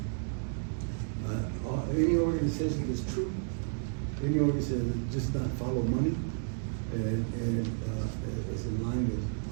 Any organization that's true. Any organization that just not follow money and is in line with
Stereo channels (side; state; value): left; silent; digital silence